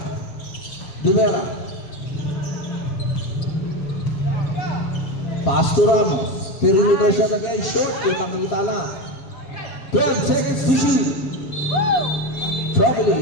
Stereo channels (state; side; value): late; right; 7.3 ms